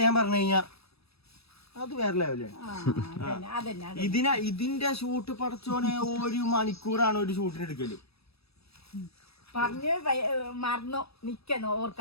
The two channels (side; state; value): right; late; 0.78 ms